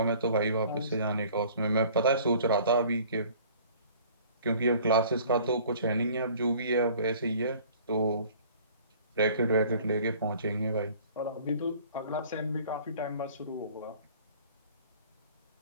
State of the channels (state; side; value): inverted; both; correlation -0.51